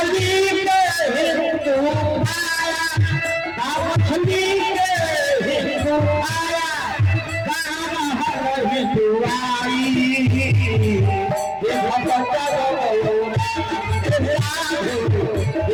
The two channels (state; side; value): noise; right; hum, 25 dB below the sound